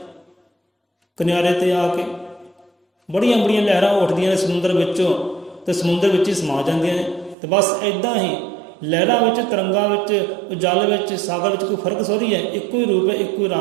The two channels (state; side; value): drops out; left; at 7.4 s